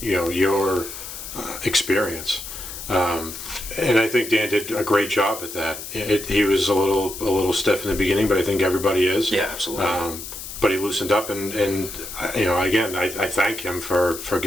your experience. And I think Dan did a great job at that. He was a little stiff in the beginning, but I think everybody is. Yeah, absolutely. But he loosened up, and again, I thank him for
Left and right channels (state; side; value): noise; left; hiss, 10 dB below the sound